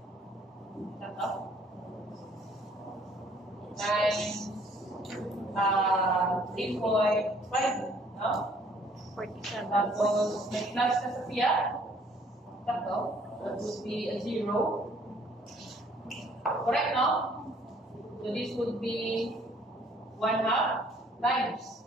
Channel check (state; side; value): normal; both; correlation 0.60